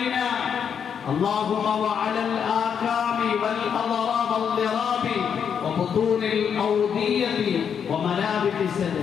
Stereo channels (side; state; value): right; quieter; 7.5 dB